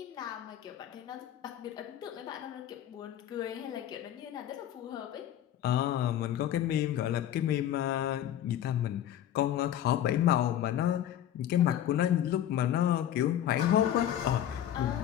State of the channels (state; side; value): quieter; right; 11.2 dB